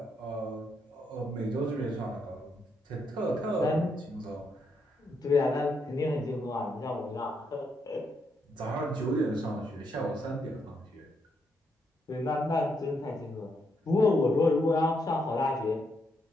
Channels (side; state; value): both; normal; correlation 0.78